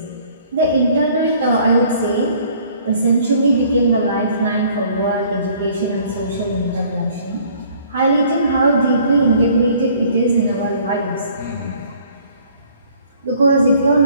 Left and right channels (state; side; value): inverted; both; correlation -0.57